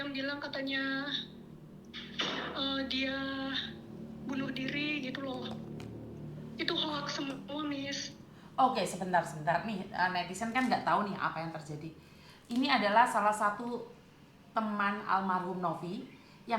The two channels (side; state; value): both; identical; correlation 1.00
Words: bilang katanya dia bunuh diri gitu loh. Itu hoax semua Miss. Oke, sebentar. Nih, netizen kan nggak tahu nih apa yang terjadi. Ini adalah salah satu teman almarhum Novi